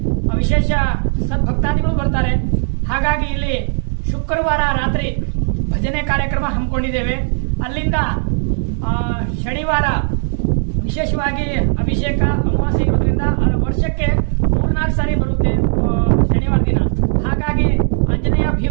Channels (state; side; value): silent; left; digital silence